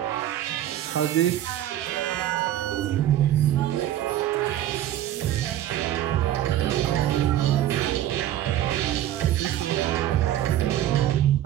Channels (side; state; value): left; quieter; 12.4 dB